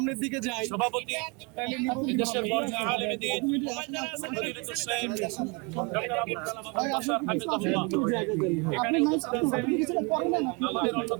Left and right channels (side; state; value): left; quieter; 31.0 dB